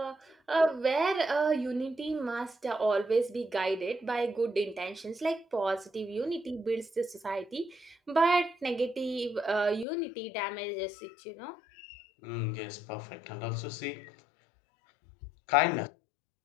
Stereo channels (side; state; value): right; drops out; at 9.9 s